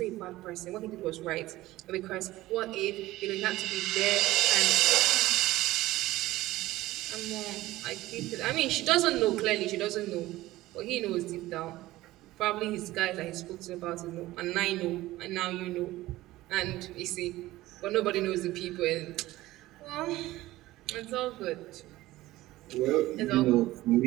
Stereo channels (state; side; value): quieter; left; 17.1 dB